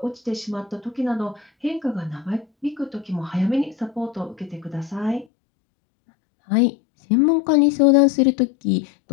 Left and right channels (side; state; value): right; drops out; at 5.2 s